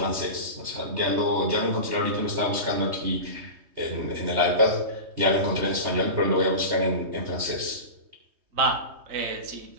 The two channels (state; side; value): late; left; 3.2 ms